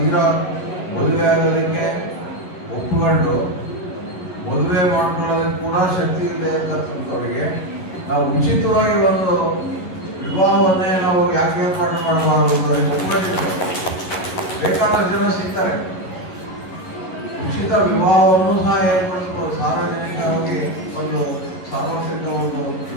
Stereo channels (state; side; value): late; right; 11 ms